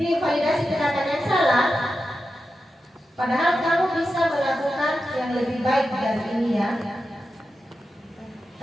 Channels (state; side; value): normal; both; correlation 0.90